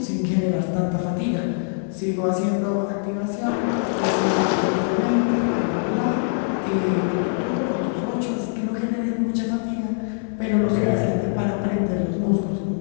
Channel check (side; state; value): right; silent; 57 dB below the other